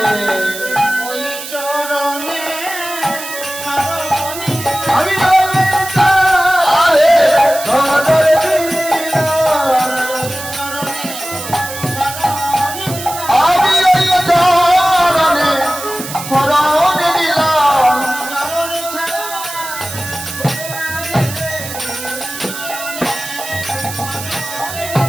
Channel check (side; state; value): right; noise; hiss, 9 dB below the sound